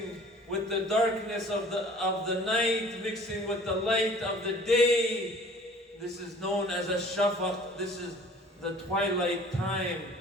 with the darkness of the night, mixing with the light of the day. This is known as a shafaq. This is the twilight time.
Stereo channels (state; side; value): normal; both; correlation 0.49